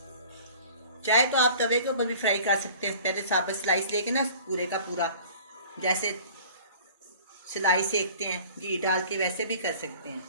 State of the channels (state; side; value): inverted; both; correlation -0.47